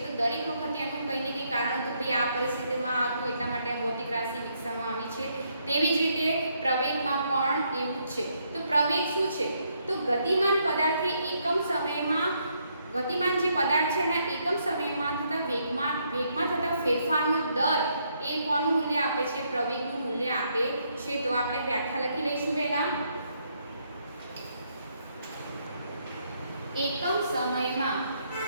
તો દરેક વખતે એનું કંઈ ને કંઈ કારણ હતું. ભાઈ આ પરિસ્થિતિમાં હતું એટલા માટે આ ભૌતિક રાશિ વિકસાવવામાં આવી છે. તેવી જ રીતે પ્રવેગમાં પણ એવું જ છે. તો પ્રવેગ શું છે? તો ગતિમાન પદાર્થે એકમ સમયમાં ગતિમાન જે પદાર્થ છે એના એકમ સમયમાં થતા વેગમાં થતા ફેરફારનો દર એ કોનું મૂલ્ય આપે છે? પ્રવેગનું મૂલ્ય આપે છે. તો આપણે વ્યાખ્યા લખી લઈશું પહેલા. એકમ સમયમાં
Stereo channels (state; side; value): inverted; both; correlation -0.74